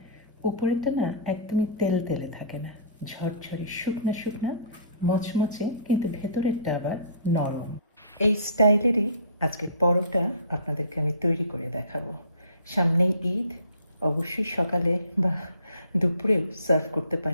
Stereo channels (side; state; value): both; inverted; correlation -0.47